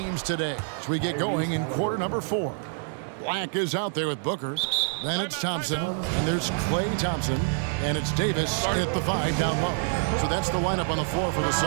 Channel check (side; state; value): left; silent; 60 dB below the other